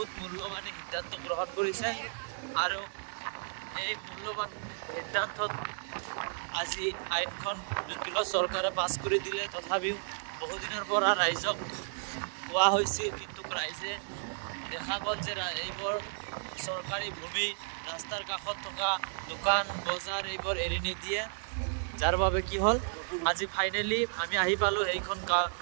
মূল্যৱান সিদ্ধান্ত গ্ৰহণ কৰিছে। আৰু এই মূল্যৱান সিদ্ধান্তত আজি আইনখন যদিও চৰকাৰে পাছ কৰি দিলে, তথাপিও বহুদিনৰ পৰা ৰাইজক কোৱা হৈছিল, কিন্তু ৰাইজে দেখা গ'ল যে এইবোৰ চৰকাৰী ভূমি, ৰাস্তাৰ কাষত থকা দোকান বজাৰ এইবোৰ এৰি নিদিয়ে, যাৰ বাবে কি হ'ল আজি ফাইনেলি আমি আহি পালোঁ সেইখন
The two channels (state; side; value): silent; left; digital silence